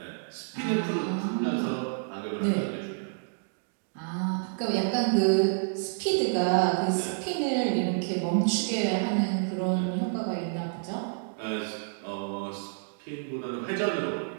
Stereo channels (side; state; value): left; silent; digital silence